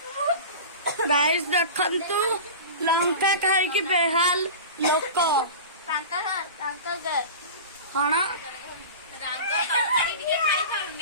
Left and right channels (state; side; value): inverted; both; correlation -0.33